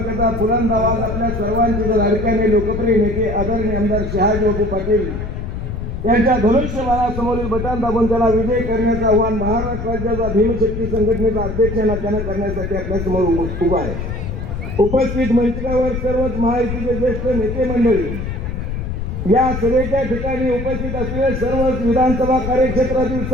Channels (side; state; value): left; noise; rumble, 5 dB below the sound